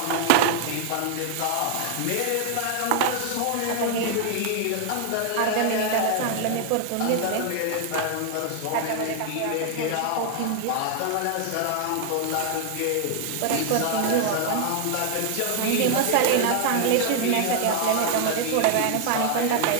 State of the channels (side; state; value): both; different; correlation 0.00